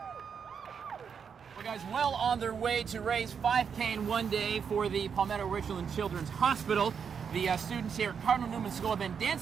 Well, guys, well on their way to raise $5K in one day for the Palmetto Richland Children's Hospital. The students here at Cardinal Newman School have been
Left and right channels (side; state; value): left; quieter; 6.8 dB